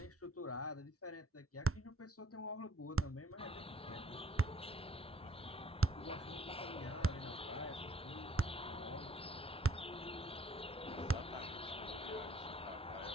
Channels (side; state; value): both; normal; correlation 0.62